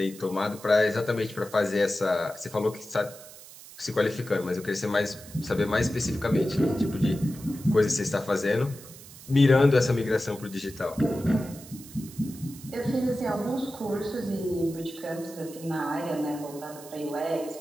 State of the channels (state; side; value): noise; right; hiss, 18 dB below the sound